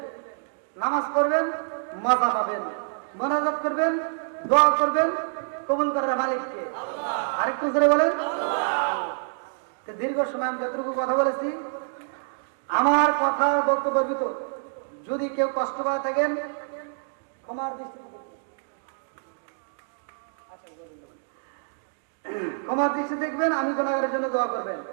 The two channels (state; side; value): silent; left; digital silence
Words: নামাজ পড়বেন, মজা পাবেন। মোনাজাত করবেন, দোয়া করবেন, কবুল করার মালিককে। আরেকটু জোরে বলেন আল্লাহ। দীর্ঘ সময় আমি যতটুকু কথা বলেছি, আমার কথার বক্তব্যের ভিতর যদি কেউ কষ্ট পায় থাকেন, ক্ষমার দৃষ্টি দেখবেন। আমি গুনাহগারের জন্য দোয়া করবেন।